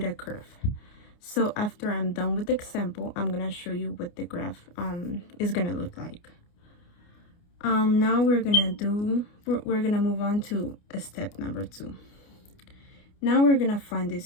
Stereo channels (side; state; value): right; late; 29 ms